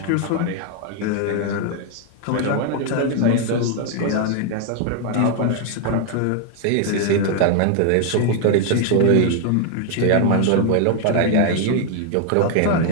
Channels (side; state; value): both; different; correlation 0.00